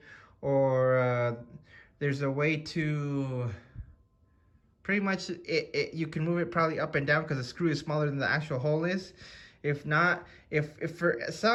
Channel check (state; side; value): identical; both; correlation 1.00